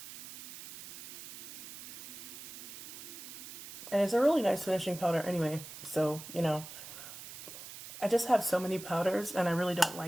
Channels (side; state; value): right; noise; hiss, 12 dB below the sound